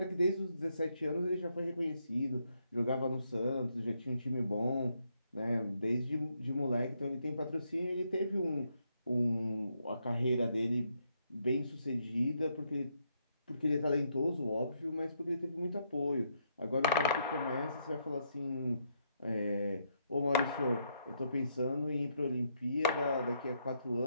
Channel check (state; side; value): inverted; both; correlation -0.76